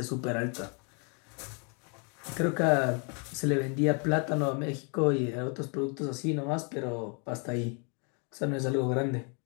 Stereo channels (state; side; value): quieter; right; 36.6 dB